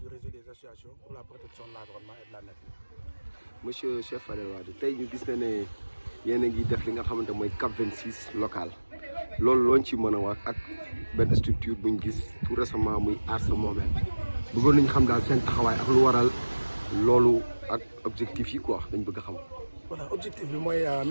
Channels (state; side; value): inverted; both; correlation -1.00